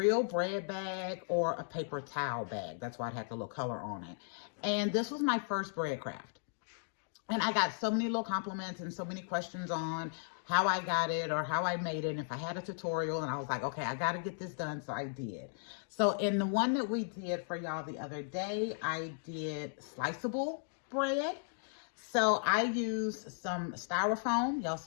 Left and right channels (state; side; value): silent; right; digital silence